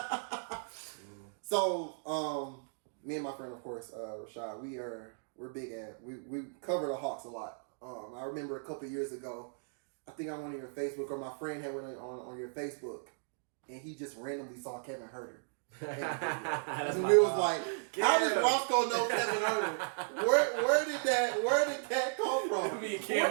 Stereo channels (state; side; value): silent; left; digital silence